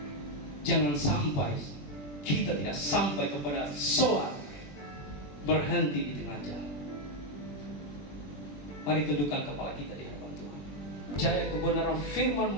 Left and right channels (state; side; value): late; right; 21 ms